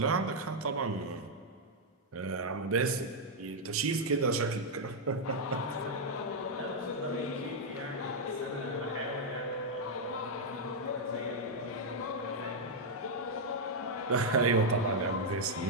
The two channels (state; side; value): normal; both; correlation -0.03